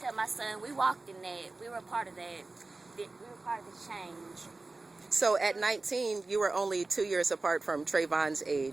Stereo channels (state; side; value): quieter; left; 3.4 dB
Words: my son, we walked in that. We were a part of that. We were part of the change. So at 19, you were only 2 years apart from Trayvon's